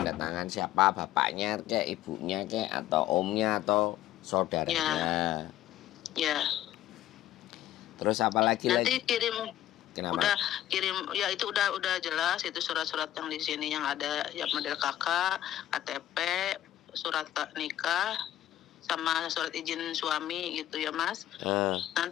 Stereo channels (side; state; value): right; quieter; 13.1 dB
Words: tangan siapa bapaknya kayak ibunya kayak atau omnya atau saudaranya. Ya. Terus apa lagi nanti kirim. Kenapa? Udah kirim ya itu udah jelas itu surat-surat yang di sini yang ada yang model kakak, KTP, surat nikah sama surat izin suami gitu ya Mas.